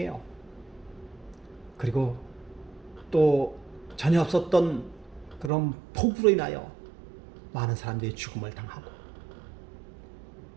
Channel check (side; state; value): left; drops out; at 5.5 s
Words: 그리고 또 전혀 없었던 그런 폭우로 인하여 많은 사람들이 죽음을 당하고